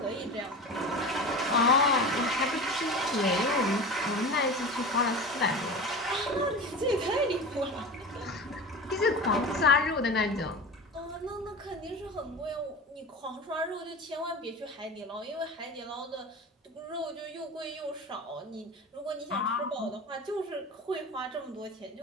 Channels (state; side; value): normal; both; correlation 0.31